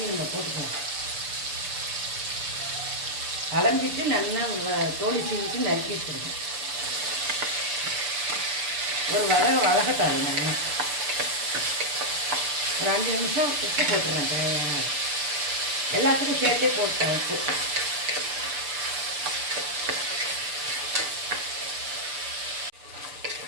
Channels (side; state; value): left; late; 6.8 ms